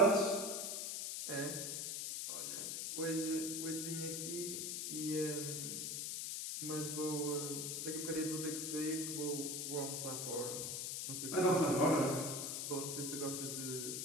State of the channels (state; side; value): noise; left; hiss, 2 dB below the sound